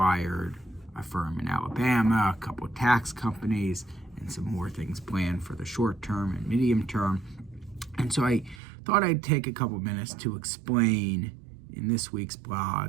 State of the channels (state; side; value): drops out; left; at 8.6 s